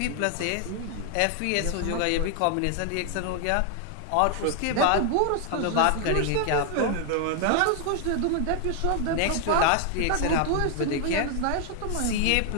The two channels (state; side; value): different; both; correlation 0.00